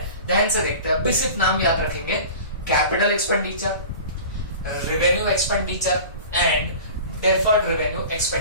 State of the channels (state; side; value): inverted; both; correlation -0.39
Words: ध्यान से देखते हैं। अभी सिर्फ नाम याद रखेंगे, capital expenditure, revenue expenditure and deferred revenue